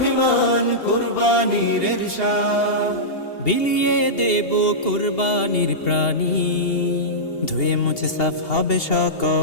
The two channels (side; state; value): right; late; 2.8 ms